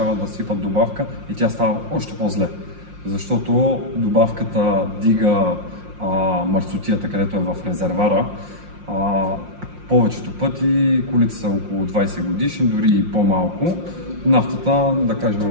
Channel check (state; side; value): late; left; 5.6 ms